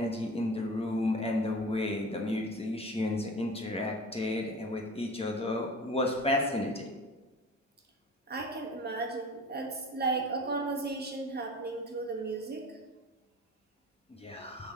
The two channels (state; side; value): normal; both; correlation 0.38